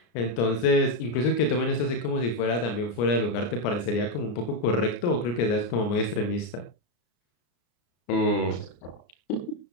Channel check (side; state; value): right; late; 34 ms